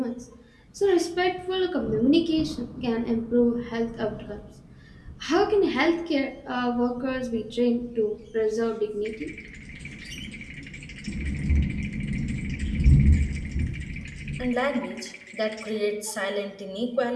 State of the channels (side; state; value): both; identical; correlation 1.00